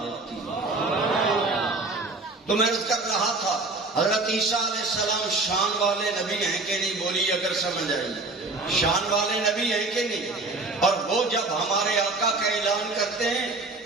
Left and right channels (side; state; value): left; quieter; 3.3 dB